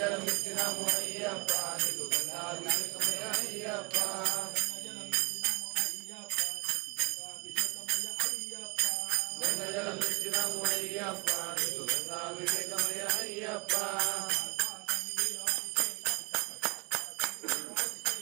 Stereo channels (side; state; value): left; quieter; 30.2 dB